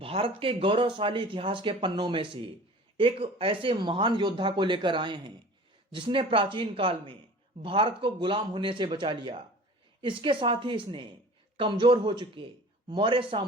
के गौरवशाली इतिहास के पन्नों में से एक ऐसे महान योद्धा को लेकर आए हैं जिसने प्राचीन काल में भारत को गुलाम होने से बचा लिया। इसके साथ ही इसने कमजोर हो चुके मौर्य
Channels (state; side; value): normal; both; correlation 0.43